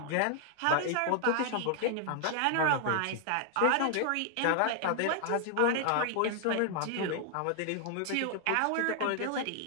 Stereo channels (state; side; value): different; both; correlation 0.00